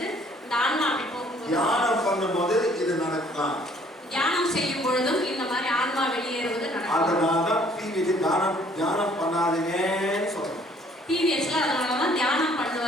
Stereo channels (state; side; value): normal; both; correlation 0.60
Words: இந்த ஆன்மா அப்படி போகும்போது தியானம் பண்ணும்போது இது நடக்கலாம். தியானம் செய்யும் பொழுதும் இந்த மாதிரி ஆன்மா வெளியேறுவது நடக்கும். அதனாலதான் டிவிக்கு தியானம் பண்ணாதீங்கன்னு சொல்றோம். டிவிஎஸ்ல அதனாலதான் தியானம்